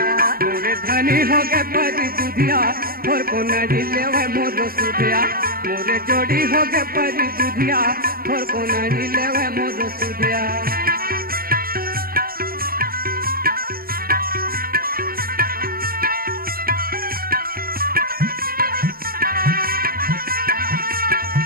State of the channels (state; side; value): late; left; 0.43 ms